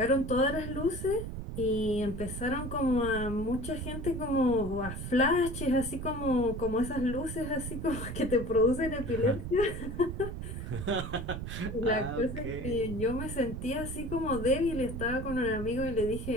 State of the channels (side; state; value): right; noise; rumble, 6 dB below the sound